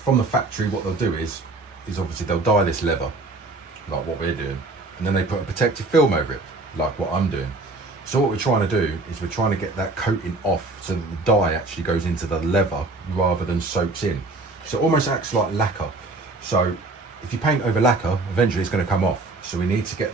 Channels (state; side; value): quieter; left; 3.2 dB